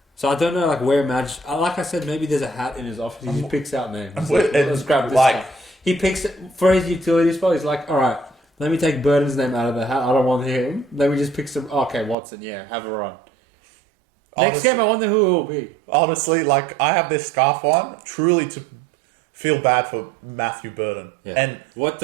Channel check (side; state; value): left; drops out; at 12.2 s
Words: So I don't know, like, where Madge... Like I said, maybe there's a hat in his office. He just picks out names. Let's grab this guy. He picks... For his utility spot, he's like, alright, let me take Burden's name out of the hat. I don't want him. Let me just pick some... Okay, Watson, yeah, have a run. Next game, I wonder who it will be. Honestly, like, I have this scarf on, truly to feel bad for Matthew Burden. Yeah. And what